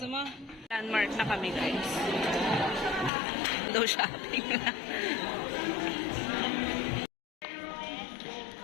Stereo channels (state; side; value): drops out; right; at 3.1 s